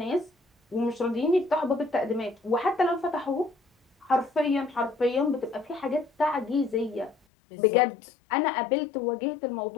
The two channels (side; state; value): right; drops out; at 7.2 s